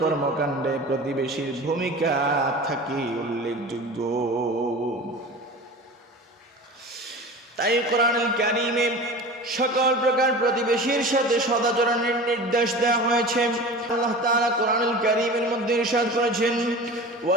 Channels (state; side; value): normal; both; correlation 0.35